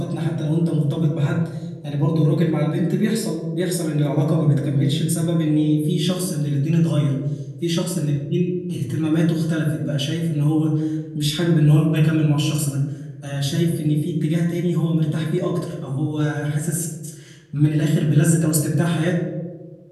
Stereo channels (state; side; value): identical; both; correlation 1.00